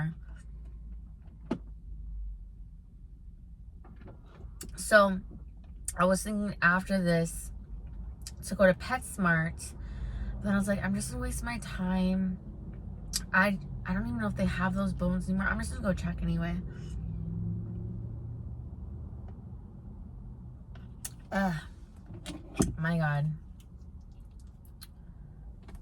So I was thinking after this to go to PetSmart, but then I was like, I'm just gonna waste my time. I don't even know if they have those bones anymore. I'm just gonna go check anyway. Ugh, my god.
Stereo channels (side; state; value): both; identical; correlation 1.00